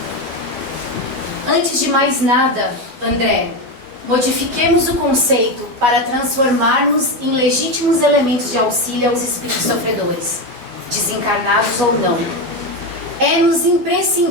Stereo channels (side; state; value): left; late; 12 ms